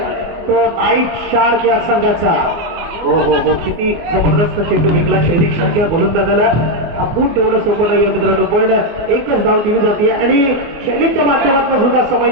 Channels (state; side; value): late; left; 24 ms